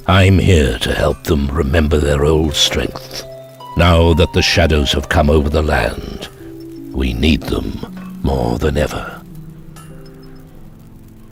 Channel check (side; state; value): both; identical; correlation 1.00